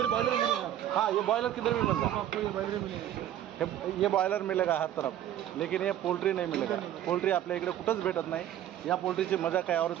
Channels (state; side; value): quieter; left; 11.6 dB